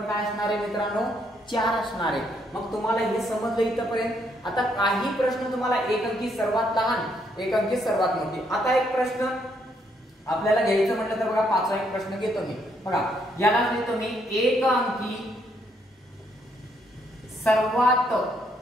काय असणार आहे मित्रांनो, 4 असणार आहे. मग तुम्हाला हे समजलं इथपर्यंत. आता काही प्रश्न तुम्हाला एक अंकी सर्वात लहान, एक अंकी सर्वात मोठी. आता एक प्रश्न आपल्याला घ्यायचं म्हटलं तर बघा, पाचवा एक प्रश्न घेतो मी बघा, याला घेतो मी एक अंकी सर्वात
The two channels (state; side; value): normal; both; correlation 0.73